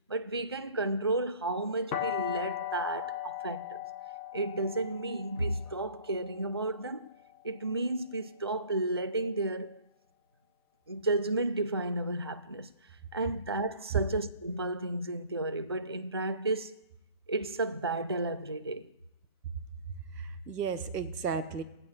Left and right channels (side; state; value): both; inverted; correlation -0.49